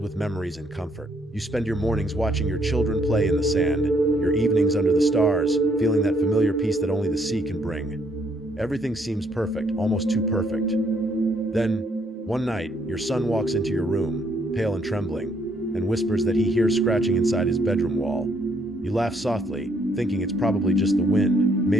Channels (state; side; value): normal; both; correlation 0.69